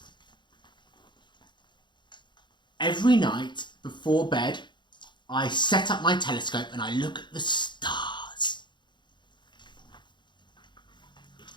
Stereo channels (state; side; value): late; right; 0.22 ms